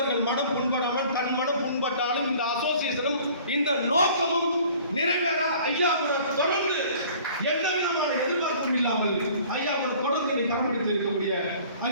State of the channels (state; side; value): inverted; both; correlation -0.50